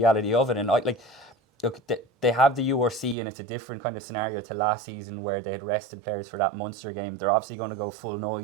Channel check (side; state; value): left; drops out; at 3.2 s